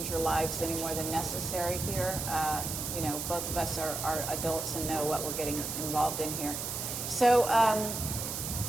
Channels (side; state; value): right; noise; hiss, 4 dB below the sound